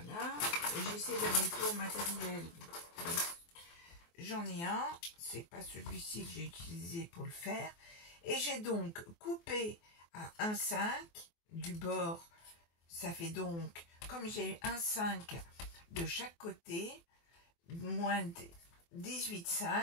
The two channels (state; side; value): late; right; 24 ms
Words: j'essaie d'aller pour matériel, j'en ai un, c'est pas celui-ci que j'ai utilisé pour le faire, et j'ai donc coupé à 1,5 du bord, ça fait donc comme j'ai un 5 de chaque côté, moins